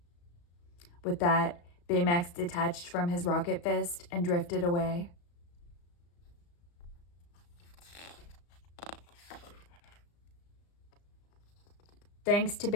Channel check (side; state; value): right; late; 35 ms